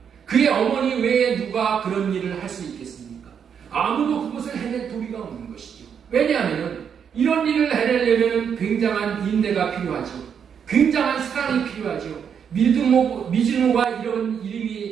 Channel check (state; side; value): quieter; left; 7.5 dB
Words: 그의 어머니 외에 누가 그런 일을 할 수 있겠습니까? 아무도 그것을 해낼 도리가 없는 것이죠. 왜냐하면 이런 일을 해내려면 굉장한 인내가 필요하죠. 굉장한 사랑이 필요하죠. 미즈노가 이런